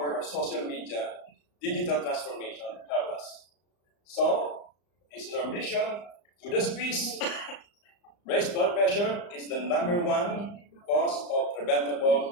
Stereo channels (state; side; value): late; right; 34 ms